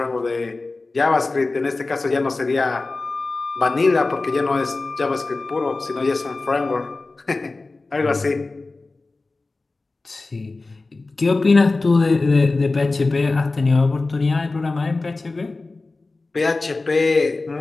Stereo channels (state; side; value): quieter; right; 3.4 dB